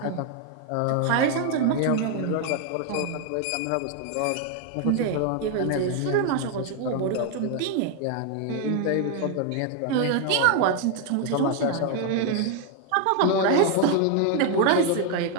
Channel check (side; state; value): both; different; correlation 0.00